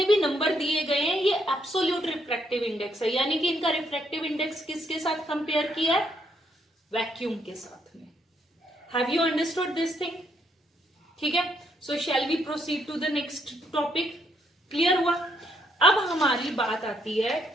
भी नंबर दिए गए हैं ये एब्सोल्यूट रिफ्रैक्टिव इंडेक्स है, यानी कि इनका रिफ्रैक्टिव इंडेक्स किसके साथ कंपेयर किया है? वैक्यूम के साथ में. Have you understood this thing? ठीक है. So shall we proceed to the next topic. Clear हुआ? अब हमारी बात आती है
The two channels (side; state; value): both; normal; correlation 0.73